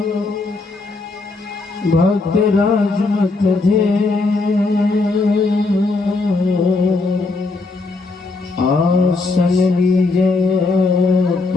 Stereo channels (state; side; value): quieter; right; 3.5 dB